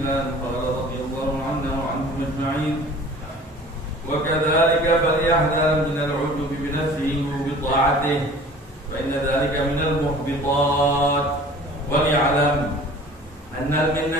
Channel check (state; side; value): normal; both; correlation 0.46